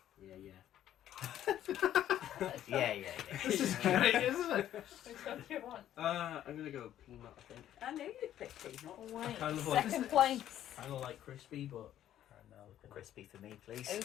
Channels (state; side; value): quieter; right; 11.6 dB